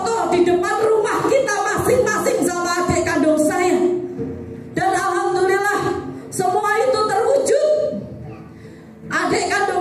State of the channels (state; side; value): identical; both; correlation 1.00